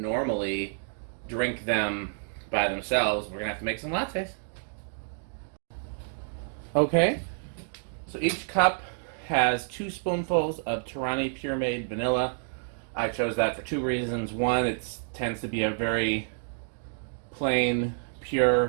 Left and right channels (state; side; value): silent; left; digital silence